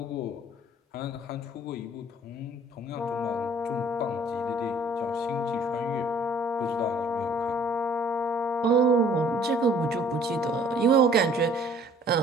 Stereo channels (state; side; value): normal; both; correlation 0.56